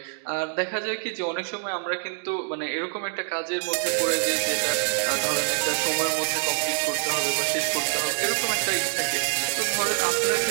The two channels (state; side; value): silent; left; digital silence